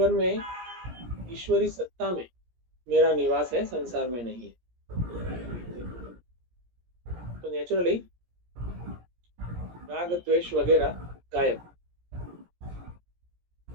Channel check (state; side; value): late; left; 17 ms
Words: में, ईश्वरी सत्ता में मेरा निवास है, संसार में नहीं है। तो नेचुरली राग द्वेष वगैरह गायब,